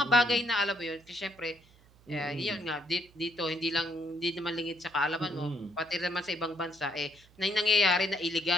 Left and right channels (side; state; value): right; noise; hum, 28 dB below the sound